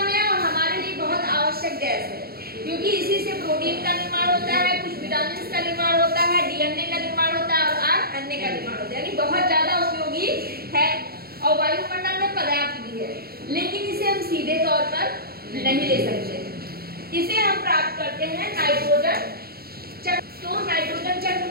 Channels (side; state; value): left; late; 0.44 ms